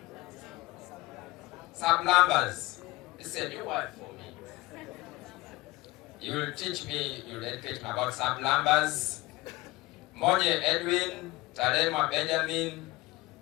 It's a new word for me. You will teach me, you will educate me about sublambers. Monye Edwin, Talema Benjamin,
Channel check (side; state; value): right; quieter; 19.9 dB